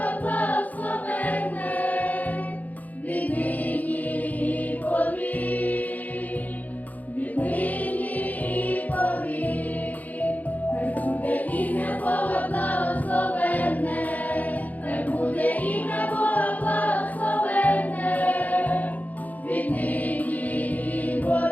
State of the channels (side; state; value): right; late; 0.078 ms